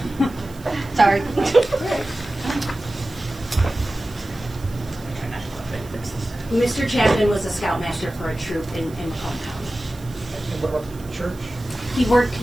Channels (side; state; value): right; noise; hiss, 22 dB below the sound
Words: Sorry. Mr. Chapman was a scoutmaster for a troop in Macomb County. And what about the church?